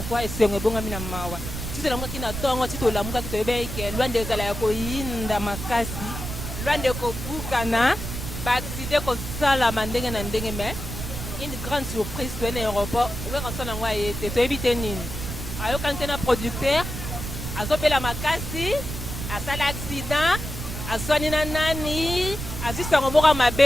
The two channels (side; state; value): right; noise; rumble, 6 dB below the sound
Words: esengo ebongwami na mawa ti tolamukaki na ntongo ti tolamukaki toyebi ke lwanda ezala ya koyinda makasi lwanda ekobukana baaccident kosalama ndenge na ndenge mais une grande surprise toye na aéroport oyaka so nango aye te toyebi te nini ayokani te na producteur azobela makasi asala accident aswani na nani azwi sango moko ya